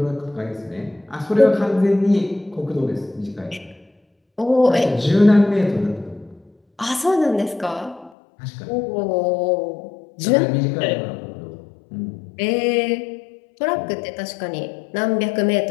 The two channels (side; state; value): right; drops out; at 8.1 s